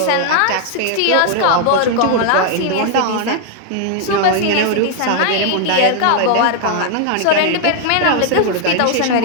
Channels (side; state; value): both; different; correlation 0.00